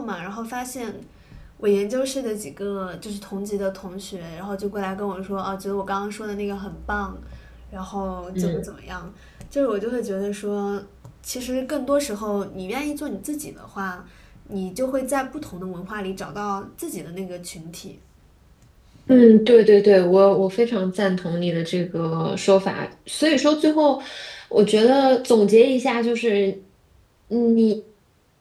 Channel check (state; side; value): identical; both; correlation 1.00